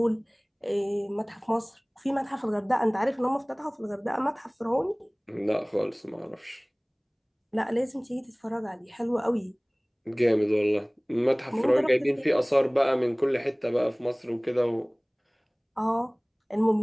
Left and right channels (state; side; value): identical; both; correlation 1.00